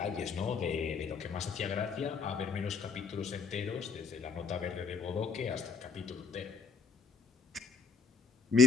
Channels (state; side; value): quieter; right; 5.1 dB